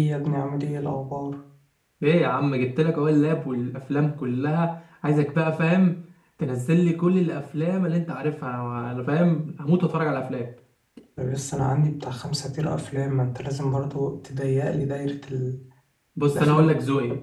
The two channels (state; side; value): identical; both; correlation 1.00